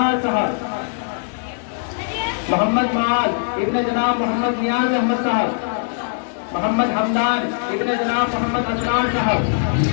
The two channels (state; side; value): silent; right; digital silence